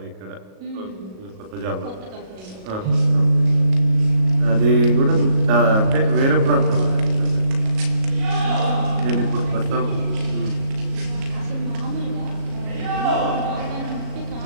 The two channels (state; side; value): late; left; 37 ms